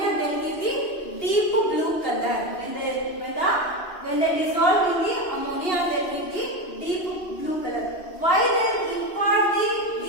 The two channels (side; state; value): right; late; 2.7 ms